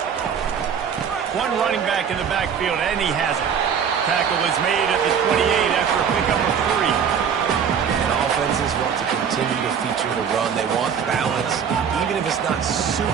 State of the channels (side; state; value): left; quieter; 7.4 dB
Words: One running back in the backfield, and he has it. Tackle is made at the 28 after a pickup of 3. And offenses want to continue to feature the run. They want balance. Even if it's not